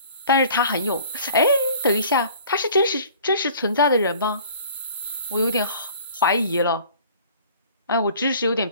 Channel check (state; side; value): inverted; both; correlation -0.49